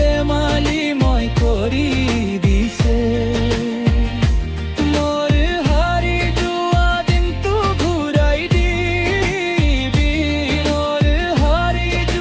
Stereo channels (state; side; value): identical; both; correlation 1.00